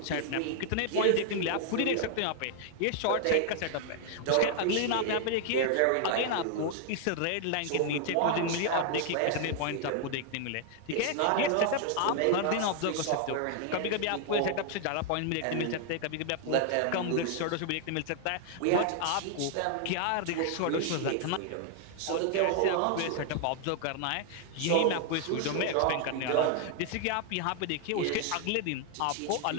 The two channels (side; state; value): both; different; correlation 0.00